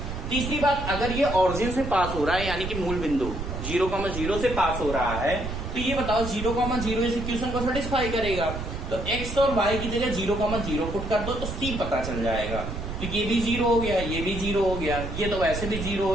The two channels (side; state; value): right; noise; rumble, 6 dB below the sound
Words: तीसरी बात, अगर ये ऑरिजिन से पास हो रहा है, यानी कि मूल बिंदु 0,0 से पास हो रहा है, तो ये बताओ 0,0 इस इक्वेशन को सेटिस्फाई करेगा। तो x और y की जगह 0,0 पुट कर दो तो c पता चल जाएगा, तो ये भी 0 हो गया, ये भी 0 हो गया, ये तो वैसे भी 0